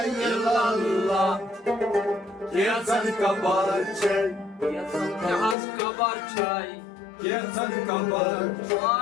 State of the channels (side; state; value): right; drops out; at 5.6 s